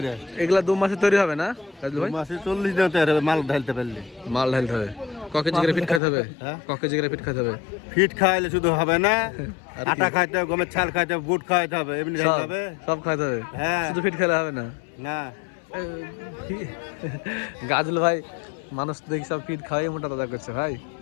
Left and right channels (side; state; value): right; drops out; at 6.0 s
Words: এগুলা 2 মাসে তৈরি হবে না রাজু ভাই? 2 মাসে 40 দিন তৈরি হবে, মাল ঢালতে পারলে। ক কেজি করে ফিট খাইতে হবে? ক কেজি করে ফিট খাইতে হবে? ফিট খাইলে শুধু হবে না, আটা খাইতে হবে, গমের ছাল খাইতে হবে, বুট খাইতে হবে, এমনি খাইতে হবে, সব খাইতে হবে। হ্যাঁ, শুধু ফিট খেলে হবে না। না গাজল ভাই মানুষ তো দেখি সব ফিট খাওয়াই মোটা তাজা করছে ভাই,